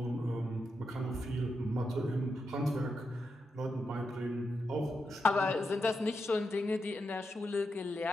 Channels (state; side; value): normal; both; correlation 0.86